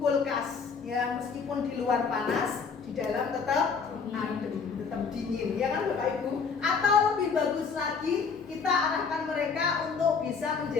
ya, meskipun di luar panas, di dalam tetap adem, tetap dingin ya kan Bapak Ibu. Atau lebih bagus lagi, kita arahkan mereka untuk bisa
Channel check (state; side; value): quieter; right; 5.5 dB